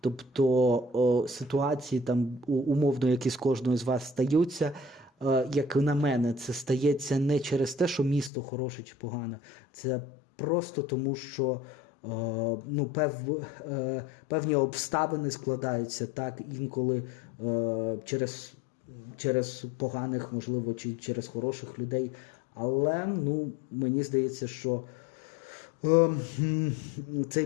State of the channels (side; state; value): right; drops out; at 8.3 s